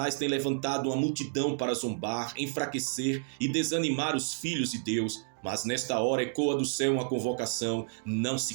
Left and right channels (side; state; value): left; silent; digital silence